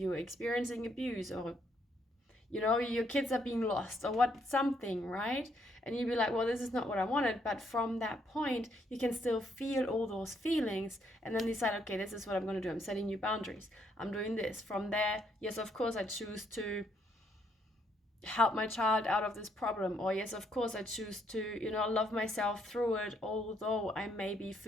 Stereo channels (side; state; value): both; normal; correlation 0.72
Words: experiencing abuse, or your kids are being lost or what, something, right? And you'd be like, well, this is not what I wanted. But from that point, you can still feel all those feelings and then decide, okay, this is what I'm going to do. I'm setting new boundaries. I'm doing this. From there, yes, of course, I choose to help my child out of this problem. Or yes, of course, I choose to, love myself through it, although I may be